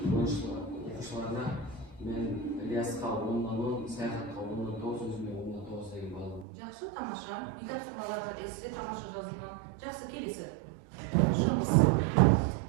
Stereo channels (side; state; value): left; drops out; at 6.5 s